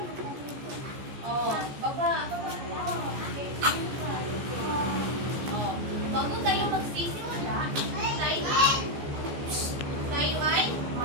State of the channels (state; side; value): late; left; 14 ms